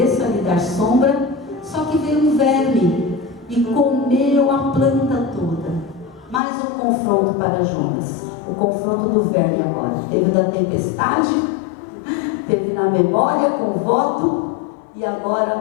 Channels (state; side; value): drops out; right; at 6.4 s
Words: lhe dar sombra. Só que veio um verme e comeu a planta toda. Mais um confronto para Jonas. O confronto do verme agora. Teve da tempestade, teve na memória com o voto, e